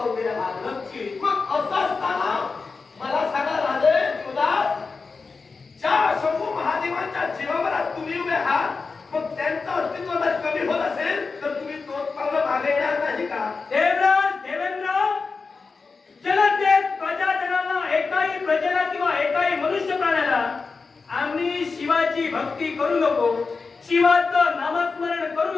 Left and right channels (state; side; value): quieter; right; 4.5 dB